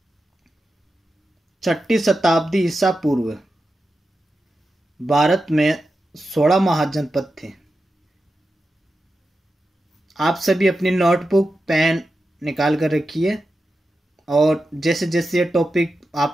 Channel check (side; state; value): both; normal; correlation 0.90